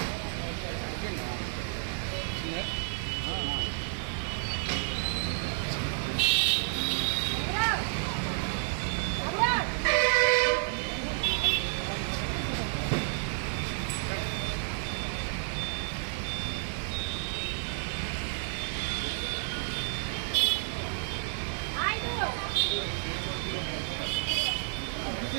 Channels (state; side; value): silent; left; 57 dB below the other